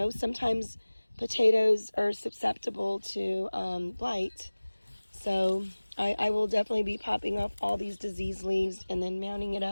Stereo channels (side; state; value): both; inverted; correlation -1.00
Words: sometimes potatoes are susceptible to blight. So I will definitely be popping off all these diseased leaves and then mounting it